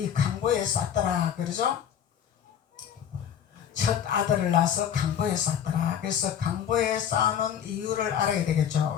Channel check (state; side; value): quieter; right; 9.0 dB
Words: 강보에 쌌더라. 그러죠? 첫 아들을 낳아서 강보에 쌓더라. 그래서 강보에 쌓아놓은 이유를 알아야